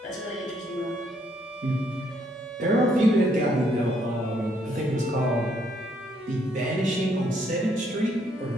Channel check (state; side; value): normal; both; correlation 0.70